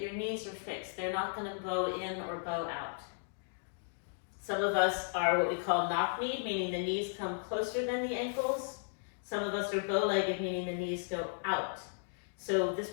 your knees are fixed. They're not going to bow in or bow out. Some of us are what we call knock-kneed, meaning the knees come closer than the ankles. Some of us are bow-legged, meaning the knees go out. So this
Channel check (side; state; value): right; silent; digital silence